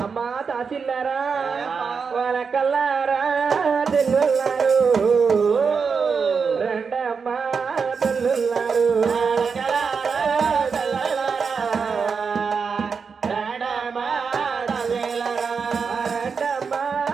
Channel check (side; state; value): left; quieter; 5.6 dB